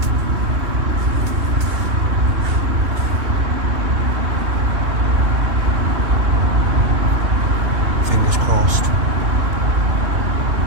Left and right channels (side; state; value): left; late; 2.8 ms